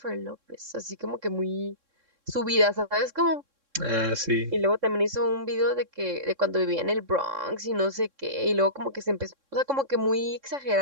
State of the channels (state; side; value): late; left; 3.6 ms